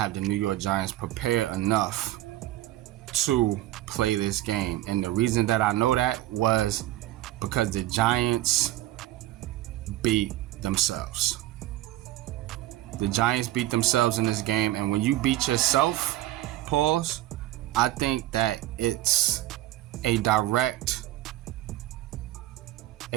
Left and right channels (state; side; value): quieter; left; 15.3 dB